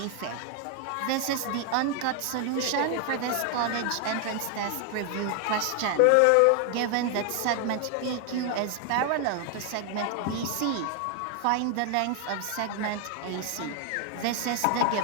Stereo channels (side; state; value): both; different; correlation 0.00